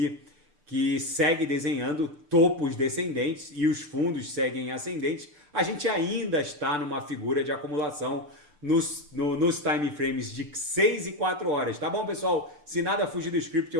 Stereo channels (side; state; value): left; late; 6.7 ms